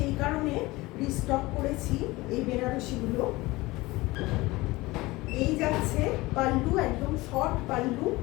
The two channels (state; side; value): quieter; right; 20.7 dB